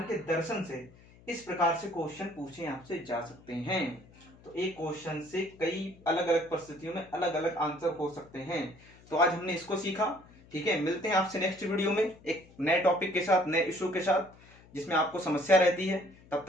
के दर्शन से इस प्रकार से क्वेश्चन पूछे आपसे जा सकते हैं। तो एक क्वेश्चन से कई अलग अलग परिस्थितियों में अलग अलग आंसर हो सकते हैं। तो आज हमने इसको सीखा। ठीक है, मिलते हैं आपसे नेक्स्ट वीडियो में एक नए टॉपिक के साथ, नए इशू के साथ, जिसमें आपको समस्या रहती है। तब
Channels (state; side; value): noise; left; hum, 24 dB below the sound